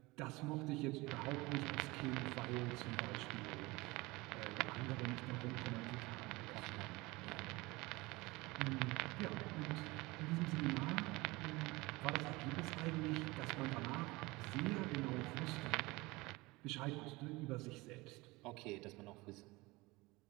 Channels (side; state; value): left; quieter; 22.5 dB